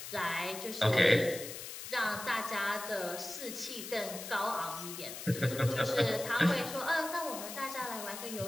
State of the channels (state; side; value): noise; left; hiss, 9 dB below the sound